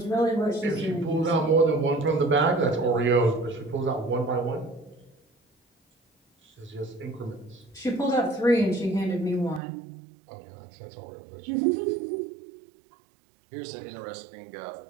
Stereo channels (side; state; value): left; drops out; at 9.6 s